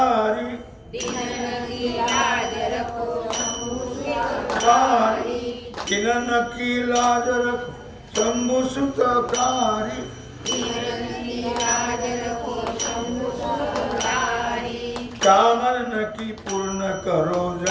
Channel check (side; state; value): both; identical; correlation 1.00